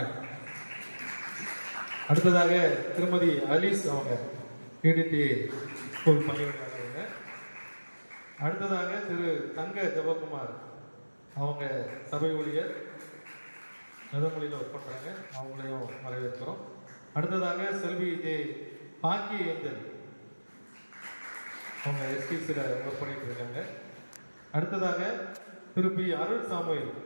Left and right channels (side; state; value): both; inverted; correlation -1.00